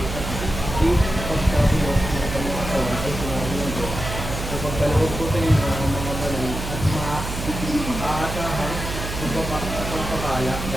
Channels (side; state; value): right; noise; hum, 6 dB below the sound